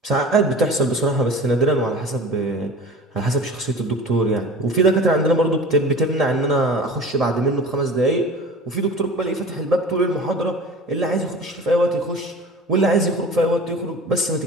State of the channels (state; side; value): normal; both; correlation 0.39